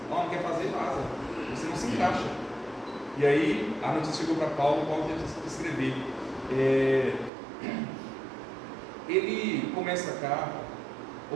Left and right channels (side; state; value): left; drops out; at 7.3 s